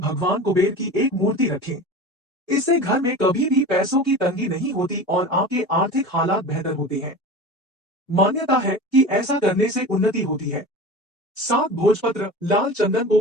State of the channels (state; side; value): normal; both; correlation 0.33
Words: कुबेर की एक मूर्ति रखें। इससे घर में कभी भी पैसों की तंगी नहीं होती और आपके आर्थिक हालात बेहतर होते हैं। मान्यता है कि ऐसा करने से उन्नति होती है। 7 भोजपत्र लाल चंदन